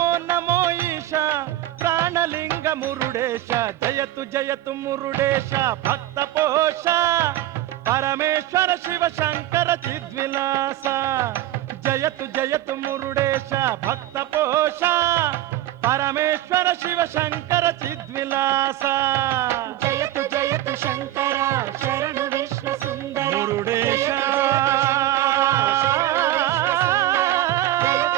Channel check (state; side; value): quieter; left; 14.3 dB